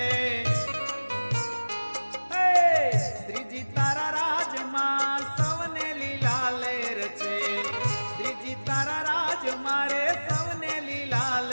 શ્રીજી તારા રાજમાં સૌને લીલા લેર છે, શ્રીજી તારા રાજ મારે સૌને લીલા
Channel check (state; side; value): inverted; both; correlation -1.00